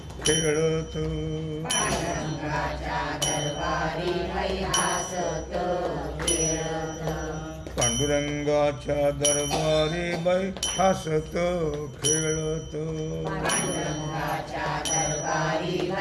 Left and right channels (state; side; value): identical; both; correlation 1.00